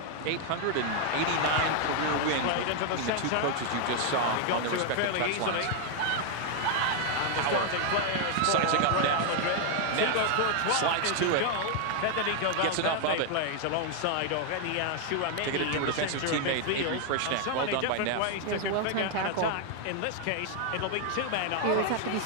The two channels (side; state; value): both; different; correlation 0.00